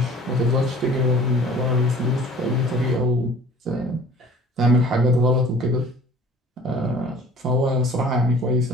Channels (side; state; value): both; normal; correlation 0.48